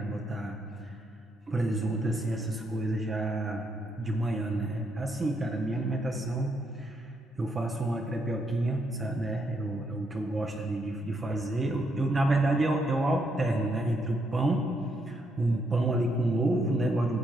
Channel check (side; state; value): both; normal; correlation 0.76